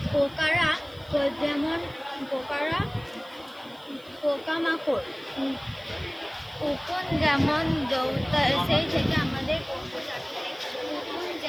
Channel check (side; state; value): right; noise; hiss, 27 dB below the sound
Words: পোকামাকড় উকুন যেমন সেই থেকে আমাদের